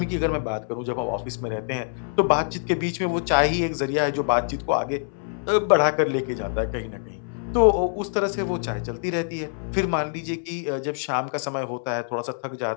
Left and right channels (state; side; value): silent; right; 62 dB below the other